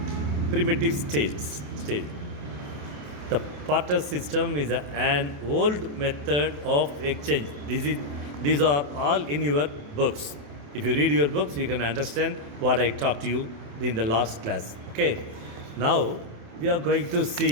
primitive state. The barter system is an old method of exchange. These are all in your books. If you read your books, you can understand what I talked to you in the last class. Okay. Now we are going to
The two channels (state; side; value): late; left; 28 ms